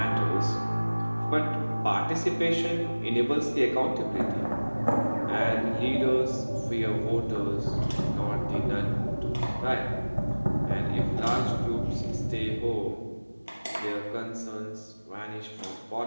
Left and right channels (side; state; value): both; inverted; correlation -1.00